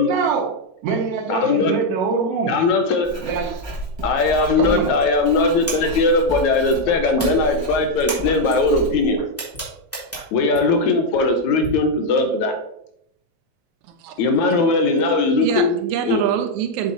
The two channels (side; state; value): both; normal; correlation 0.01